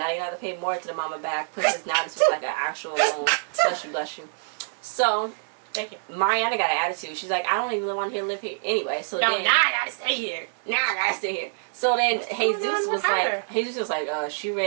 you have to pay more to the mama back because now this was like an actual loan. Bless you. So thank you. Mariana got an attitude. She's like, I don't even want to live here anyway. So now I gotta stay here. So then Jesus was like, she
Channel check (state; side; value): silent; left; digital silence